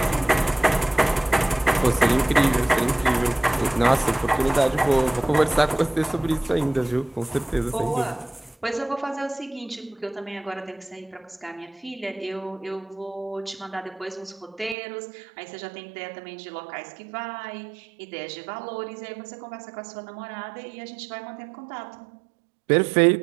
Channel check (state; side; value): drops out; left; at 14.8 s